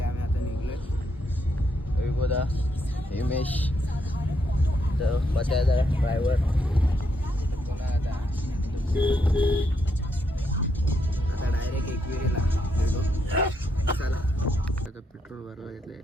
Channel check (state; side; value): normal; both; correlation 0.78